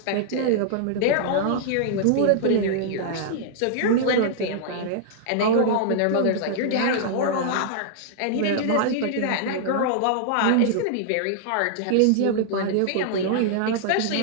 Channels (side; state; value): both; different; correlation -0.01